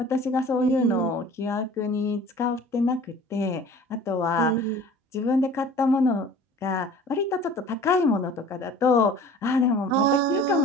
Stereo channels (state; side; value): normal; both; correlation 0.45